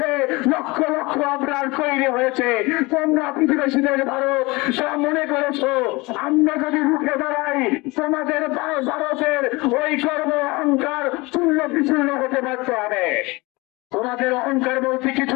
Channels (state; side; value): quieter; right; 23.8 dB